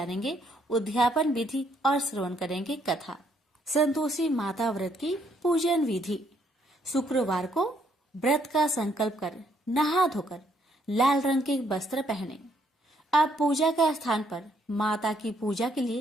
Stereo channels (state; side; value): normal; both; correlation 0.70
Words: उद्यापन विधि और श्रवण करेंगे कथा। संतोषी माता व्रत की पूजन विधि। शुक्रवार को व्रत का संकल्प कर नहा धोकर लाल रंग के वस्त्र पहने। अब पूजा के स्थान पर माता की पूजा के